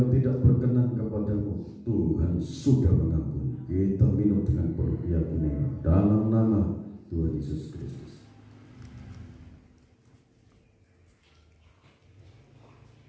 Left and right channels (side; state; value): both; identical; correlation 1.00